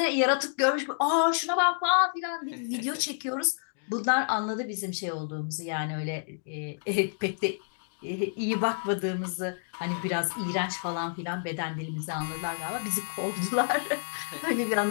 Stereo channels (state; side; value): silent; right; digital silence